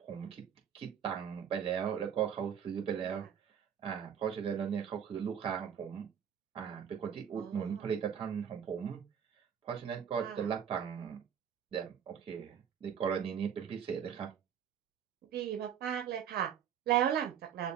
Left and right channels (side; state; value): left; quieter; 8.3 dB